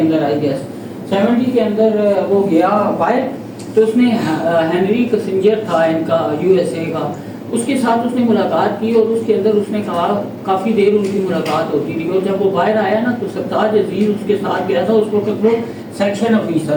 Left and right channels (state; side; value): identical; both; correlation 1.00